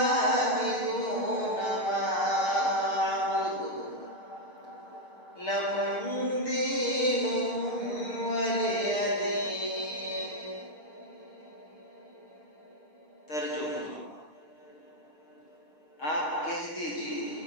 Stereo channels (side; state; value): right; late; 6.5 ms